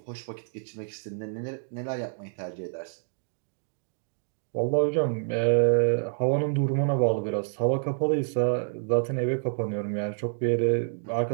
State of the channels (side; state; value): left; silent; digital silence